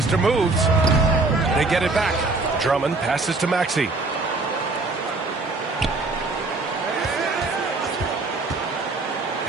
Moves. They get it back. Drummond passes to Maxey.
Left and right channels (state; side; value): quieter; left; 3.4 dB